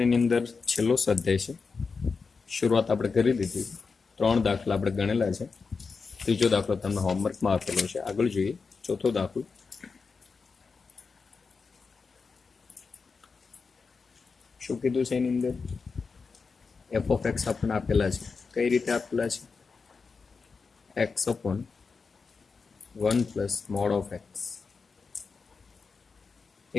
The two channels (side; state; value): right; quieter; 4.8 dB